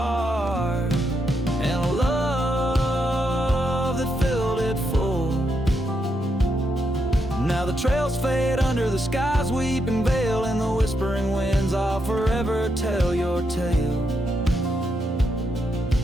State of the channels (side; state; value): both; normal; correlation 0.81